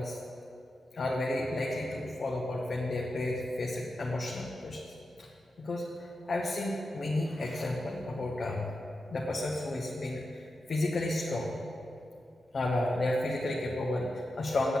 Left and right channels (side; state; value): both; normal; correlation 0.89